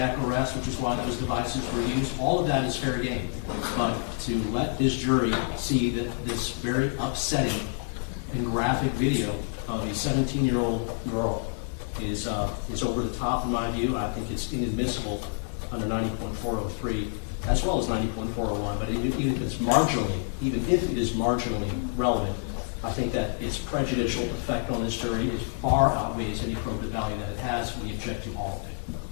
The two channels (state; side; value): silent; right; 59 dB below the other